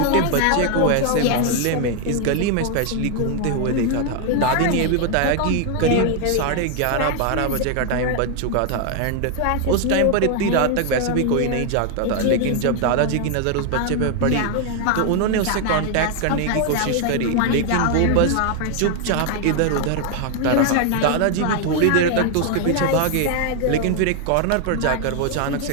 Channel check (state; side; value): different; both; correlation 0.00